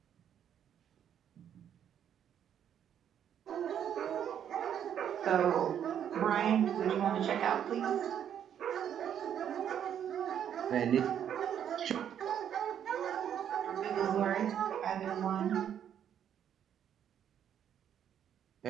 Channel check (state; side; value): quieter; left; 9.3 dB